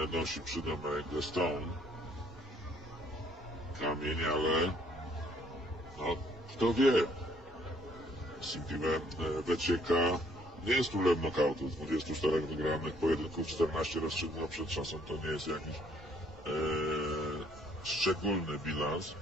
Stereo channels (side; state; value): both; normal; correlation 0.64